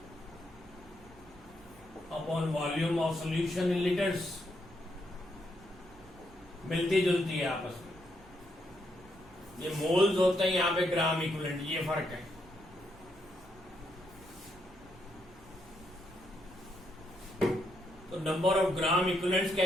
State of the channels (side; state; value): right; noise; rumble, 23 dB below the sound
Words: upon volume of solution in litres. मिलती जुलती है आपस में। ये मोल्स होते हैं, यहां पे ग्राम इक्विवेलेंट, ये फर्क है। तो नंबर ऑफ ग्राम इक्विवेलेंट्स